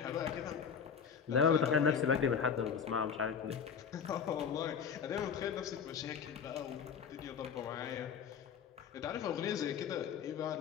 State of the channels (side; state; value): right; quieter; 7.0 dB